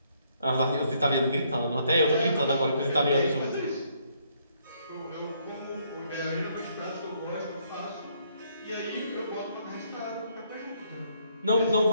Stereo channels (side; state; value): both; inverted; correlation -0.70